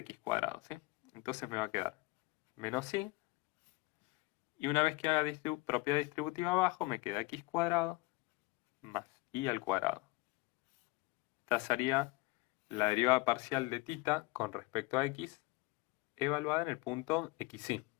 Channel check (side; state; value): right; quieter; 22.7 dB